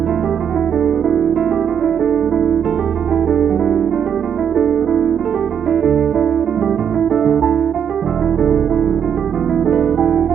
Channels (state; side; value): quieter; left; 8.2 dB